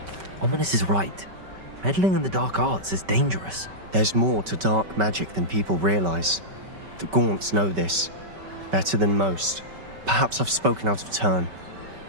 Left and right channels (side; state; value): left; late; 5.2 ms